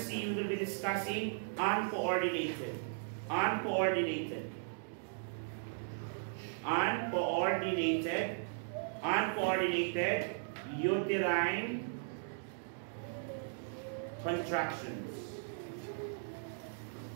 we will be discussing uncoordinated. Uncoordinated uterine contractions.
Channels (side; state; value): left; silent; digital silence